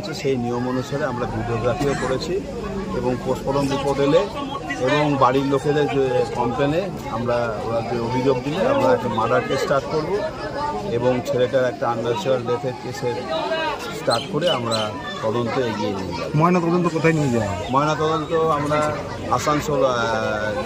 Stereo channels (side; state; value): both; identical; correlation 1.00